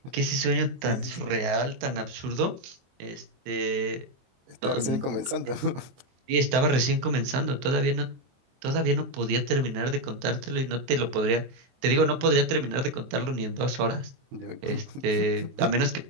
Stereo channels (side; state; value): left; late; 23 ms